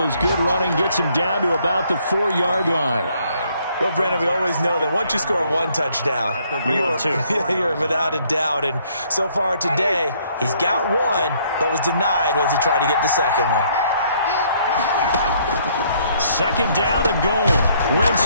as good running gets them down to about the 4-yard line. Well, Brandon, we always know that once you score one touchdown, you're without a doubt. And so far today, he's got one, but was denied as he tried to get the second one. Second down and goal.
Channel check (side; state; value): both; inverted; correlation -0.66